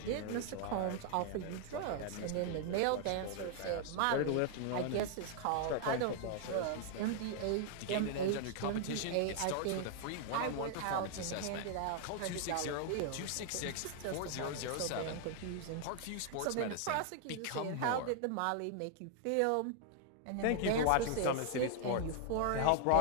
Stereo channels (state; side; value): different; both; correlation 0.00